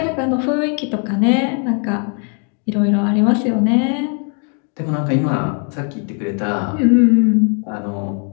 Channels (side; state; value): right; quieter; 39.6 dB